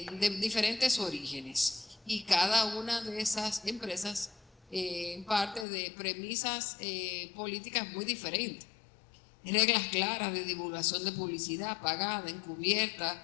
diferentes orígenes, y cada una de esas empresas parte de premisas políticas muy diferentes. Reglas claras de divulgación de publicidad pagada,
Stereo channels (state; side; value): drops out; right; at 5.7 s